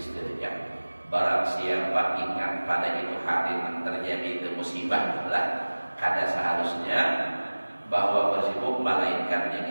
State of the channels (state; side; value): inverted; both; correlation -1.00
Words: Barang siapa ingat pada itu hari yang terjadi itu musibah lah kada seharusnya bahwa bersibuk melainkan diawalikan